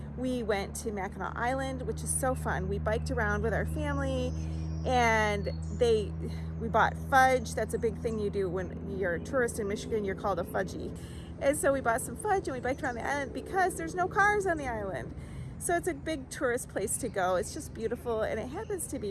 we went to Mackinac Island, which is so fun. We biked around with our family, and we bought fudge. That's a big thing you do when you're a tourist in Michigan. You're called a fudgie. And so we bought some fudge and we biked around the island because there's no cars on the island. So it's a big tourist place to go. It's just beautiful, and it happens to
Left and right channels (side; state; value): both; identical; correlation 1.00